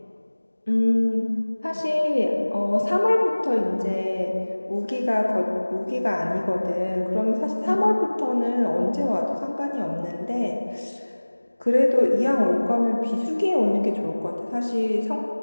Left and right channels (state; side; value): inverted; both; correlation -1.00